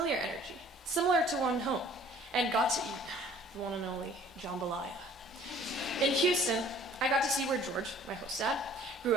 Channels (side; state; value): both; normal; correlation 0.54